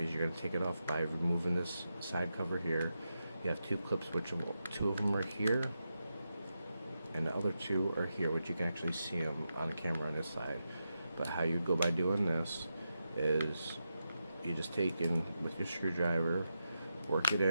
going to take it off by removing this side cover here. You have 2 clips, which 2 of them are here, and the other 2 are here, which you can actually see them on camera on this side. But how you go by doing this is you just take in with your screwdriver, work it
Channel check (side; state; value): both; inverted; correlation -0.88